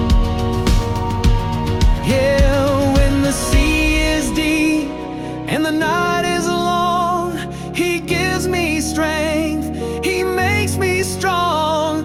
Yeah, when the sea is deep and the night is long, He gives me strength, He makes me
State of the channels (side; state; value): both; identical; correlation 1.00